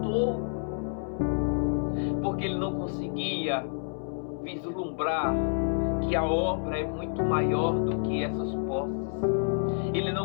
porque ele não conseguia vislumbrar que a obra é muito maior do que essas posses. Ele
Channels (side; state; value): right; silent; 59 dB below the other